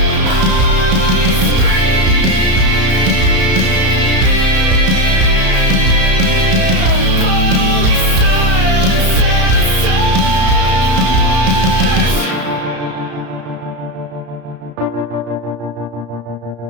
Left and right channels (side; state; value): left; late; 33 ms